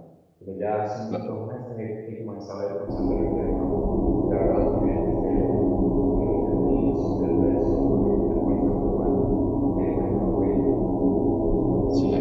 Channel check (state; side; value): identical; both; correlation 1.00